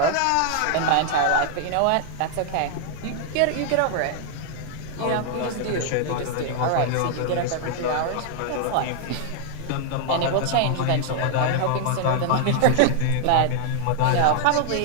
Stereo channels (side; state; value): both; different; correlation 0.00